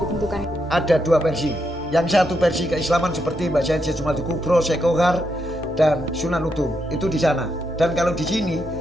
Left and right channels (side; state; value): both; normal; correlation 0.81